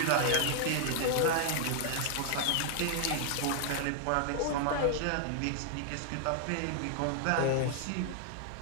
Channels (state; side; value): different; both; correlation 0.00